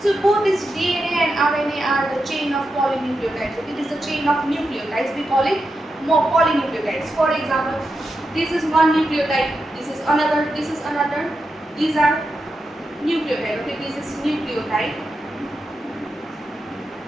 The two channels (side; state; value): both; normal; correlation 0.88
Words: both this DNA and RNA are the chain of polynucleotides. Okay, this is a chain of nucleotides. We call it polynucleotides. For example, this is one nucleotide. This is another. This is another. These are nucleotide. Okay, this is nucleotide.